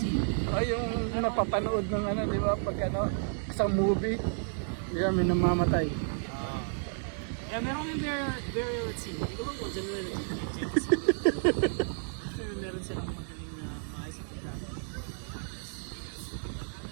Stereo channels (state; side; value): silent; left; digital silence